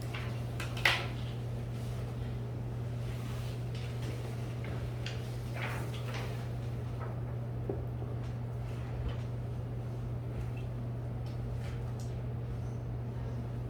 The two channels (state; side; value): identical; both; correlation 1.00